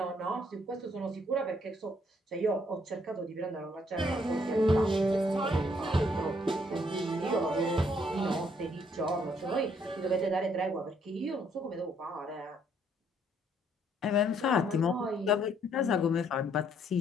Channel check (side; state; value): both; normal; correlation 0.68